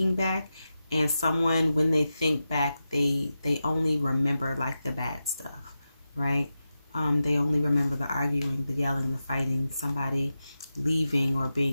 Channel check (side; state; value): both; inverted; correlation -0.91